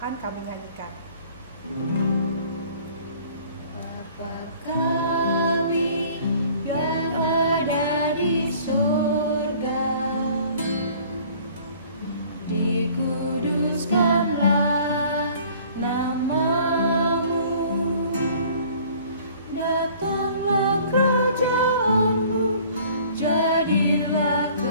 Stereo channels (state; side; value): inverted; both; correlation -0.53